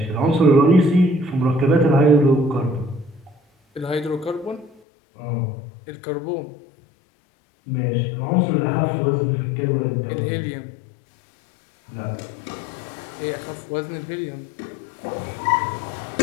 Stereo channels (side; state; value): right; drops out; at 4.8 s